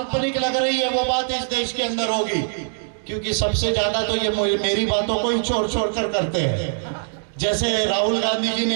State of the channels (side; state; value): left; silent; digital silence